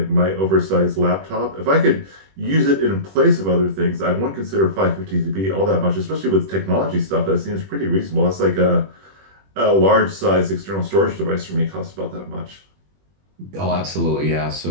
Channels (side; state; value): left; late; 21 ms